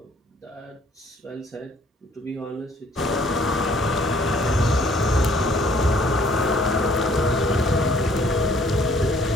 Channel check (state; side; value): normal; both; correlation 0.60